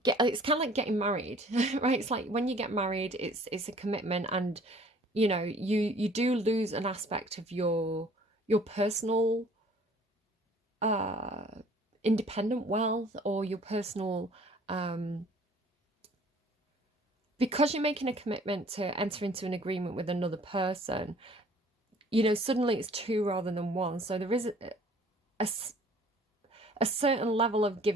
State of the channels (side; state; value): both; normal; correlation 0.53